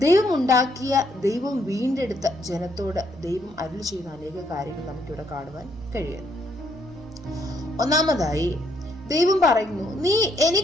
ദൈവം ഉണ്ടാക്കിയ, ദൈവം വീണ്ടെടുത്ത ജനത്തോട് ദൈവം അരുളി ചെയ്ത അനേക കാര്യങ്ങൾ നമുക്കിവിടെ കാണുവാൻ കഴിയുന്നു. ഒന്നാമതായി ദൈവം പറയുന്നു, നീ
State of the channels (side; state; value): both; normal; correlation 0.72